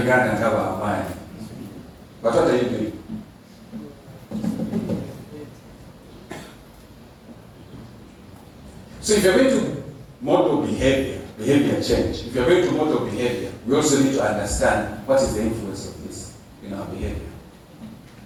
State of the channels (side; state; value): both; identical; correlation 1.00